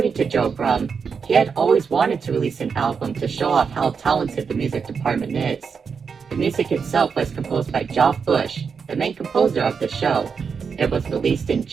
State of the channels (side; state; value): left; quieter; 5.9 dB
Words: to Joe Brum, he had always wanted to release an album to show off how talented the music department is. The music itself was composed by Geoff Bush, the main composer of the show. It was released in